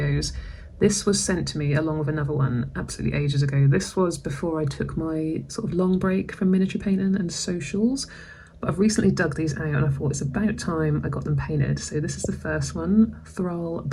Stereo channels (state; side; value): identical; both; correlation 1.00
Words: This was sent to me along with another one absolutely ages ago. This was before I took my sort of long break from miniature painting and socials, but I've recently dug these out and I thought it's about time I got them painted. So this is the first one, Thrall